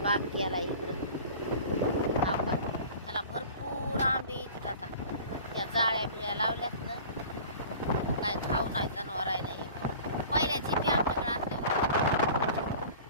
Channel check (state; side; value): inverted; both; correlation -0.42